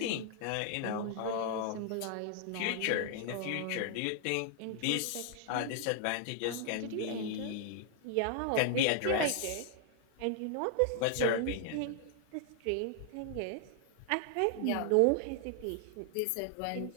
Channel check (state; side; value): different; both; correlation 0.00